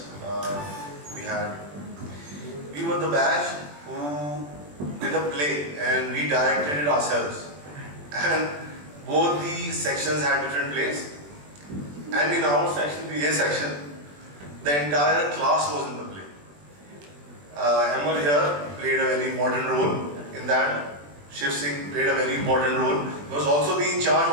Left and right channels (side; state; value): left; late; 21 ms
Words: we had. We were the batch who did a play and we directed it ourselves. And both the sections had different plays. And in our section, the A section, the entire class was in the play. Emil here played a very important role in that. Shiv Singh played a very important role. He was also in charge